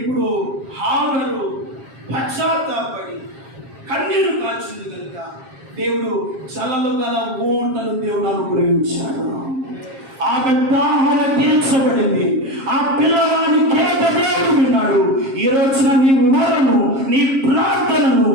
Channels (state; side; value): late; left; 7.4 ms